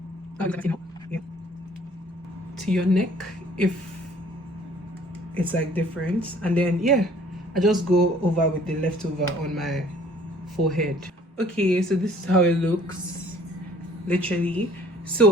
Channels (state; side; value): normal; both; correlation 0.56